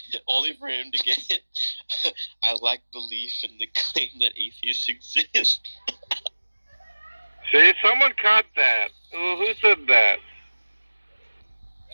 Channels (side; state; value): both; inverted; correlation -1.00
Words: Only for him to get I lack belief in the claim that atheists exist. See, someone caught that. Who said that?